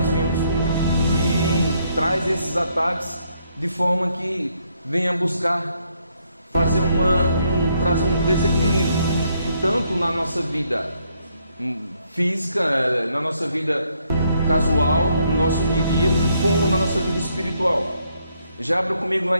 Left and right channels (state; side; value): inverted; both; correlation -0.73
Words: vimos e traz esses ataques de forma que venha buscar fazer trazer um desequilíbrio, e tanto na nossa vida física, na nossa vida casual, no nosso dia a dia, como na nossa vida espiritual. Já abra comigo lá